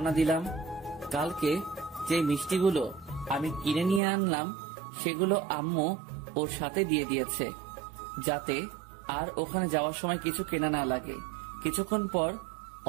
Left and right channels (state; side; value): drops out; left; at 4.0 s